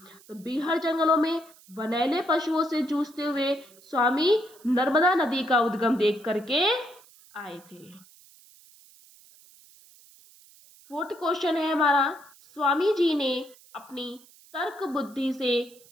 तो बीहड़ जंगलों में वनैले पशुओं से जूझते हुए स्वामी नर्मदा नदी का उद्गम देख करके आए थे। फोर्थ क्वेश्चन है हमारा, स्वामी जी ने अपनी तर्क बुद्धि से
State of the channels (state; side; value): noise; right; hiss, 25 dB below the sound